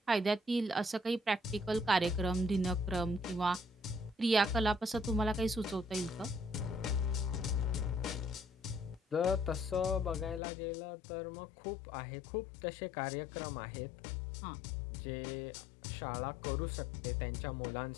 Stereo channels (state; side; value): drops out; right; at 10.4 s